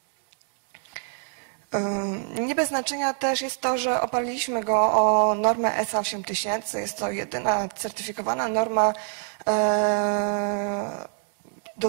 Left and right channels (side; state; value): left; silent; 61 dB below the other